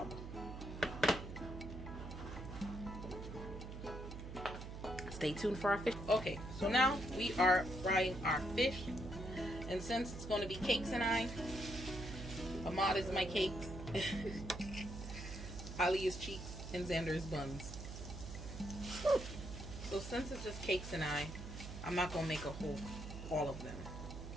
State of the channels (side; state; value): right; noise; hum, 8 dB below the sound